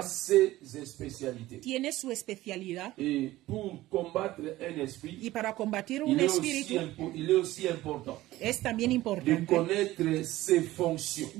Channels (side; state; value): left; quieter; 16.6 dB